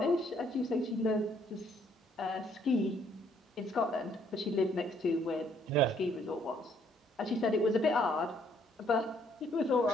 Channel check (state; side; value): normal; both; correlation 0.67